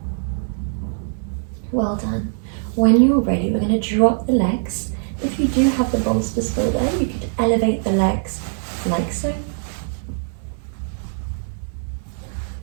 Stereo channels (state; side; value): silent; left; 64 dB below the other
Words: Well done. When you're ready, we're going to drop the legs. If you do have the bolster still there, you could elevate the legs like so.